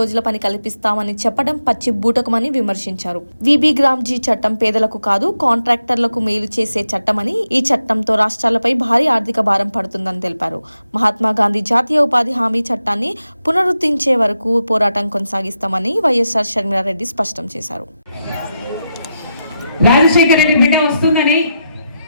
రోజుల పని కల్పిస్తామని చెప్పడం పచ్చి బూటకమని విమర్శించారు. విబి గ్రామ్జీ చట్టం పేదలకు కాదు కాంట్రాక్టర్లకు మేలు చేసే చట్టమని, ఈ చట్టంతో రాష్ట్రాలపై భారీ ఆర్థిక భారం పడుతుందని తెలిపారు. మహాత్మా గాంధీ జాతీయ ఉపాధి హామీ చట్టాన్ని పునరుద్ధరించే వరకు పోరాటం కొనసాగిస్తామని వైఎస్ఆర్ షర్మిలారెడ్డి స్పష్టం చేశారు. రాజశేఖర రెడ్డి బిడ్డ వస్తుందని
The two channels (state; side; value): inverted; both; correlation -0.86